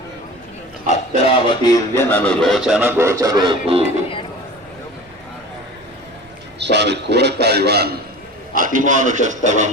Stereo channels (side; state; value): right; noise; rumble, 29 dB below the sound